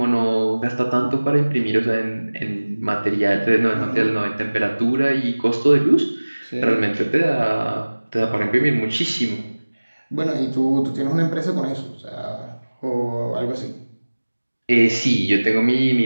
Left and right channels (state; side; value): inverted; both; correlation -1.00